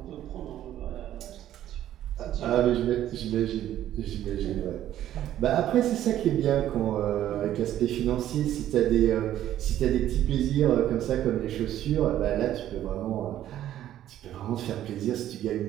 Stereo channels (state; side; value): quieter; left; 12.2 dB